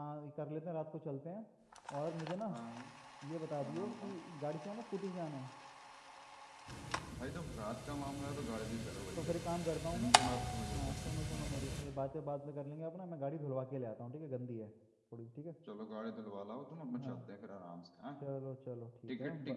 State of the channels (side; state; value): both; identical; correlation 1.00